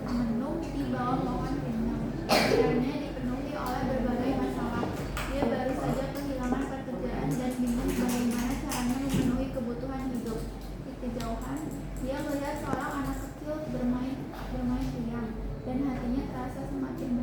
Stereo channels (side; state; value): both; identical; correlation 1.00